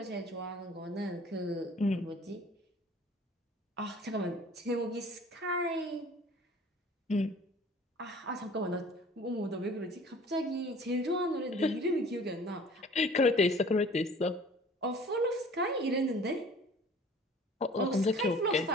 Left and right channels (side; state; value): both; normal; correlation 0.48